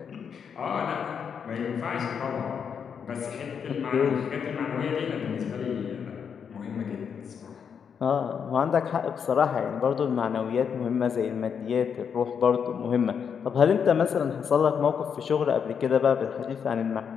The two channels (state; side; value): quieter; right; 7.1 dB